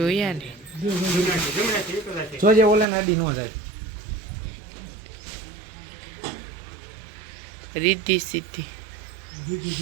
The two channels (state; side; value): drops out; left; at 2.9 s